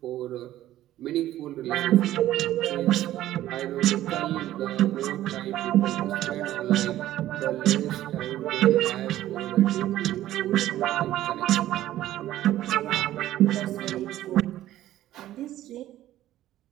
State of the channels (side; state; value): left; quieter; 13.8 dB